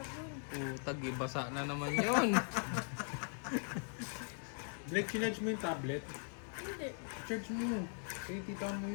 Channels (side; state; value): right; silent; 51 dB below the other